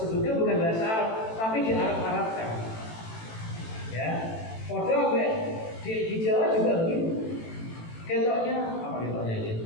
bukan bahasa Arab tapi di Arab-Arabkan. Ya, padahal di Jawa juga begitu. Ketoknya apa ketoknya ini?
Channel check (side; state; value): right; late; 18 ms